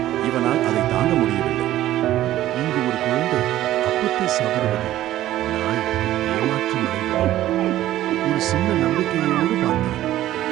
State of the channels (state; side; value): quieter; left; 13.9 dB